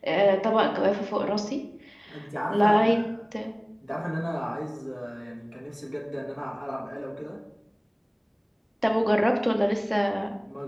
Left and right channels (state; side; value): identical; both; correlation 1.00